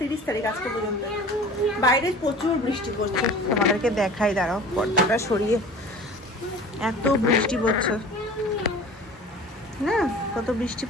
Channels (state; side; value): normal; both; correlation 0.42